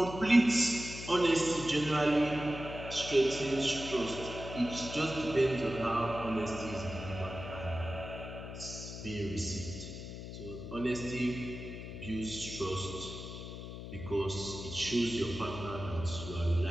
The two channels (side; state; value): left; noise; hum, 9 dB below the sound